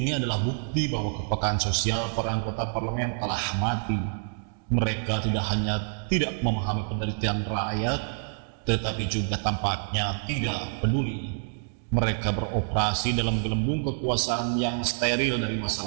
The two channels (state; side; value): silent; left; 60 dB below the other